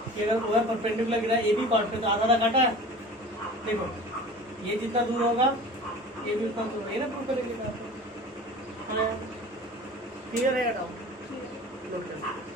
कि अगर वो परपेंडिकुलर गिरा ए बी कॉर्ड पे तो आधा काटा है, देखो ये जितना दूर होगा ये भी उतना दूर, ये ना प्रूव करेंगे। क्लियर है डाउट?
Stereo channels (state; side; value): normal; both; correlation 0.40